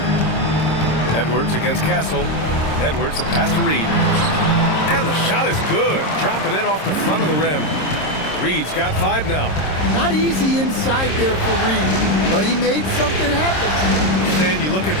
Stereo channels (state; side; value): late; right; 26 ms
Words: Edwards against Castle. Edwards, the pass to Reed. And the shot is good. Drop it in off the front of the rim. Reed's got 5 now. Not easy inside there for Reed, but he made something happen. Stan, you look at